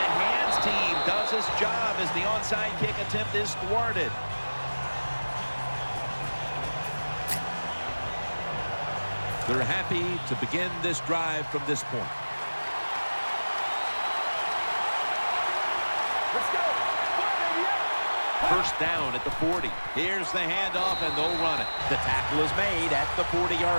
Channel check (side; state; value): both; inverted; correlation -1.00